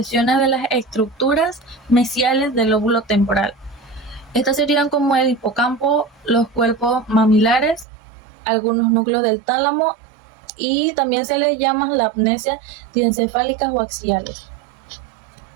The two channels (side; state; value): left; drops out; at 7.9 s